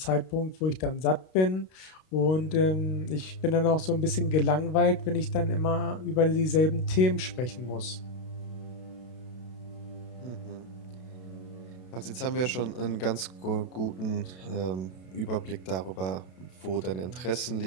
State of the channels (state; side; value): late; right; 32 ms